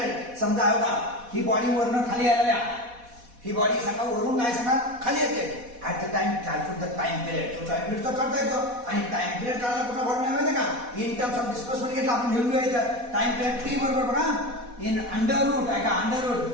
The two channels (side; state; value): left; late; 4.1 ms